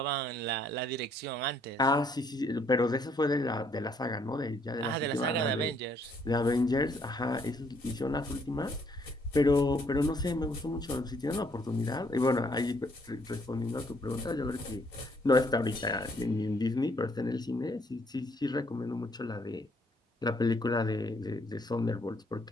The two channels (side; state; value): both; normal; correlation 0.67